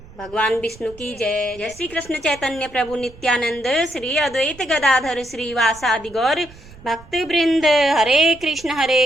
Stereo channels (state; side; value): noise; right; rumble, 21 dB below the sound